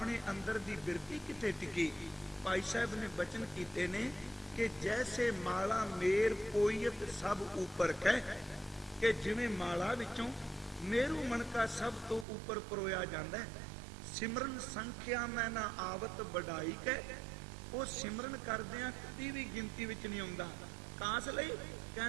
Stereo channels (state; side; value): drops out; left; at 12.2 s